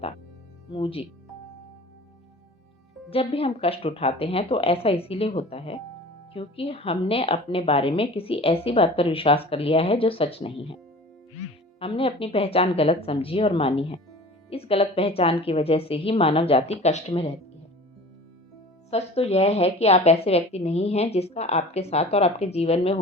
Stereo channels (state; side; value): normal; both; correlation 0.41